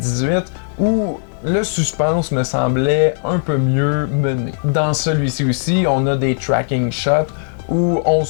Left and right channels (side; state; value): right; silent; digital silence